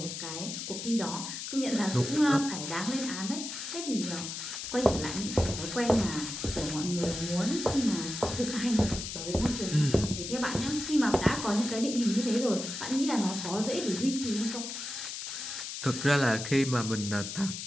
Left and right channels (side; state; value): left; noise; hiss, 6 dB below the sound